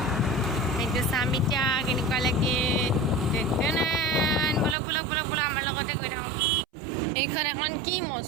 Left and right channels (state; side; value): drops out; left; at 4.8 s